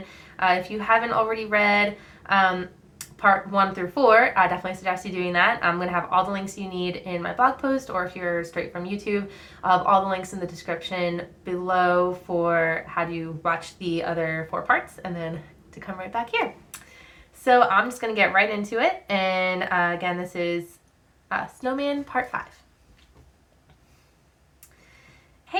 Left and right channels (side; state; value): both; identical; correlation 1.00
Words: If you haven't already read part 1 through 4, I definitely suggest you doing that. I'm going to have all the links you need in my blog post, or if you're straight from YouTube, I'll have all the links in the description below for how to watch the other 4 parts and then to come right back here. So I'm just going to get right into it. And again, this is Snowman Part 5.